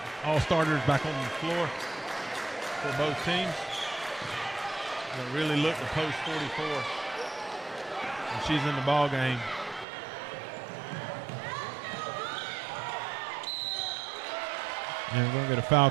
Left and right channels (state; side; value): drops out; left; at 9.9 s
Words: All starters back on the floor for both teams. Going to really look to post 44. And she's in the ball game. And we're going to get a foul